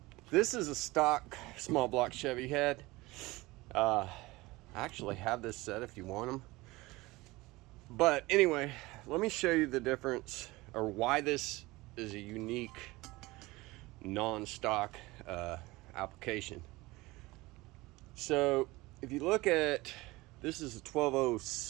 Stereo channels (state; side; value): quieter; left; 21.0 dB